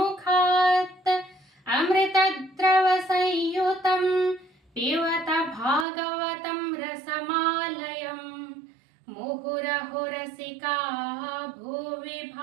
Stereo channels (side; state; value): left; drops out; at 5.9 s